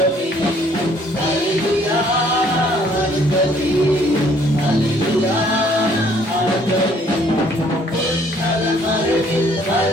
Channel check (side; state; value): both; normal; correlation 0.62